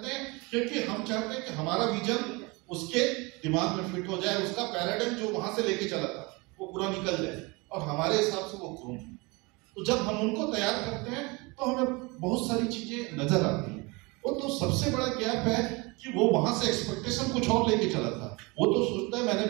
हैं? क्योंकि हम चाहते हैं कि हमारा विजन उसके दिमाग में फिट हो जाए, उसका पैराडाइम जो वहां से लेके चला था वो पूरा निकल जाए और हमारे हिसाब से वो ग्रूम। तो जब हम उनको तैयार करते हैं तो हमें बहुत सारी चीजें नजर आती हैं। वो तो सबसे बड़ा गैप है कि वो वहां से एक्सपेक्टेशन कुछ और लेके चला था। वो तो सोचता है मैंने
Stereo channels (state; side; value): quieter; left; 26.3 dB